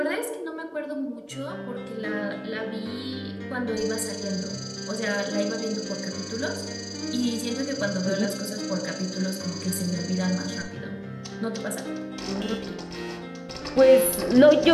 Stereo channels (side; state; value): both; identical; correlation 1.00